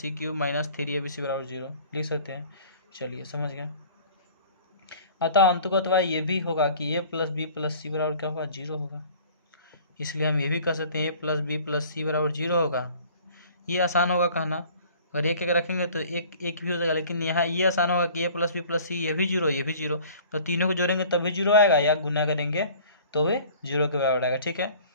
C Q minus 3ab बराबर 0 लिख सकते हैं। चलिए समझ गए। अतः अंततः ये भी होगा कि ए प्लस बी प्लस सी बराबर क्या होगा, 0 होगा। इसलिए हम ये भी कह सकते हैं A plus B plus C बराबर 0 होगा। ये आसान होगा कहना, अगर एक एक रखेंगे तो एक एक भी हो जाएगा, लेकिन यहाँ ये आसान होगा कि ए प्लस बी प्लस सी ये भी 0 ये भी 0, तो तीनों को जोड़ेंगे तभी 0 आएगा, या गुना करेंगे तो वे 0 के बराबर आएगा। ठीक है,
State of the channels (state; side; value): inverted; both; correlation -0.48